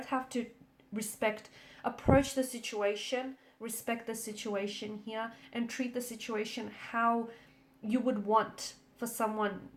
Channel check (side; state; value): both; identical; correlation 1.00